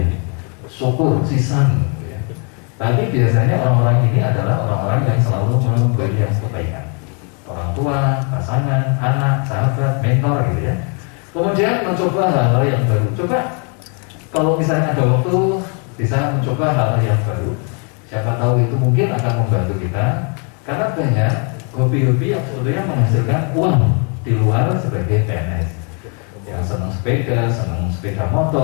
Syukur, sisan. Gitu ya. Tapi biasanya orang-orang ini adalah orang-orang yang selalu memberi yang kebaikan. Orang tua, pasangan, anak, sahabat, mentor gitu ya. Kemudian mencoba hal-hal yang baru. Coba kalau misalnya ada waktu bisa mencoba hal-hal yang baru. Siapa tahu itu mungkin akan membantu kita. Karena banyak hobi-hobi yang sebetulnya menghasilkan uang di luar sebagai PNS. Yang senang sepeda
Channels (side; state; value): right; quieter; 37.3 dB